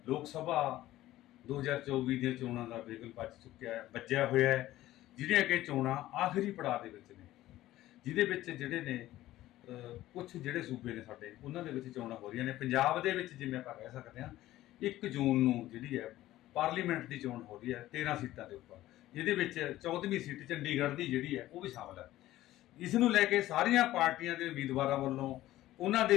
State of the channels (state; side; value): quieter; right; 15.2 dB